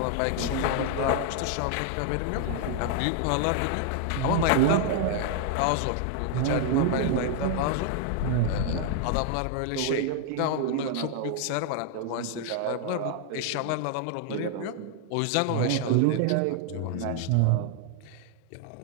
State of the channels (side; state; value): both; different; correlation 0.00